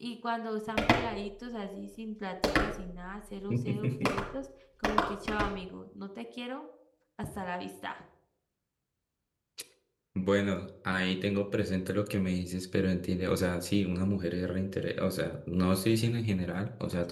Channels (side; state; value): both; identical; correlation 1.00